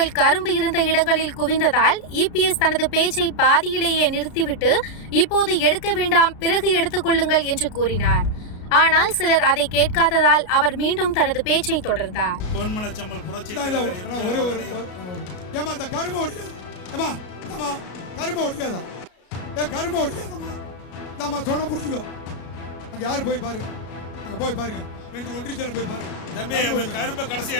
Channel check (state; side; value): late; right; 33 ms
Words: கரும்பு இருந்த இடங்களில் குவிந்ததால் இபிஎஸ் தனது பேச்சை பாதியிலேயே நிறுத்திவிட்டு இப்போது எடுக்க வேண்டாம், பிறகு எடுத்துக் கொள்ளுங்கள் என்று கூறினார். ஆனால் சிலர் அதை கேட்காததால் அவர் மீண்டும் தனது பேச்சை தொடர்ந்தார். பொன்மனச்சம்மல் புரட்சி ஒரே ஒரு ஏமா அந்த கரும்பு ஓடிக்காத ஏமா ஆமா கரும்பு ஓடிக்காதா கரும்பு ஓடிக்காதம்மா நம்ம சொன்ன புரிஞ்சுக்கோ. அங்க யாரு போய் பாரு, அங்க போய் பாருங்க, 2 ஒன்றியத்துல போய் பாருங்க. தம்பி கரும்பை கடைசியா